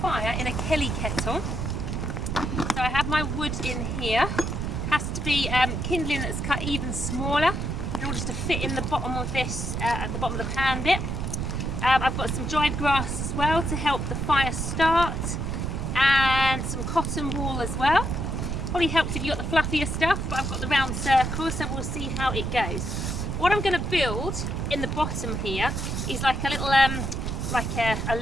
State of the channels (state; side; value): noise; right; rumble, 2 dB below the sound